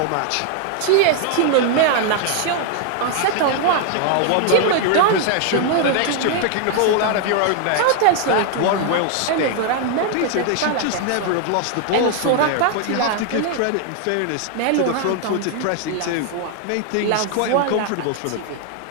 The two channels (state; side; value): different; both; correlation 0.00